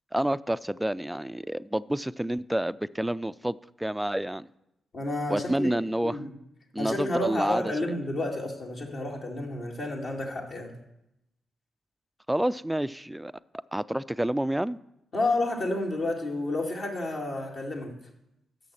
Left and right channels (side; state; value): both; normal; correlation 0.93